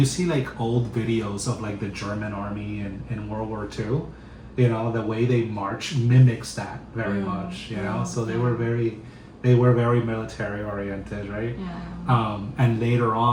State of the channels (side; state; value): both; identical; correlation 1.00